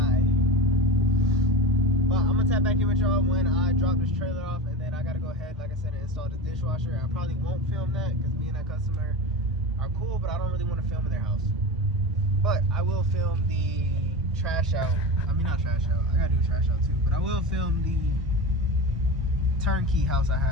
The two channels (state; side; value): normal; both; correlation 0.26